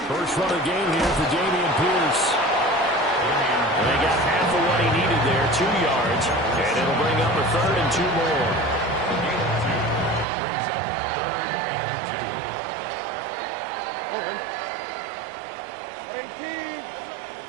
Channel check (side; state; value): left; drops out; at 10.2 s